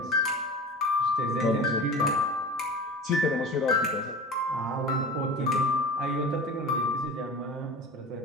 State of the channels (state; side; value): normal; both; correlation 0.35